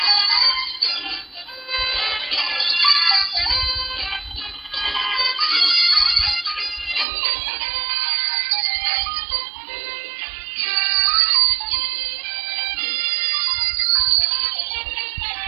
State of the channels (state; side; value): drops out; left; at 7.1 s